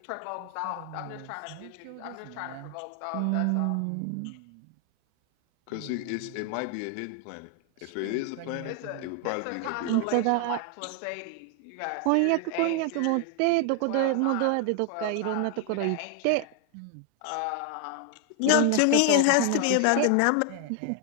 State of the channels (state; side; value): different; both; correlation 0.00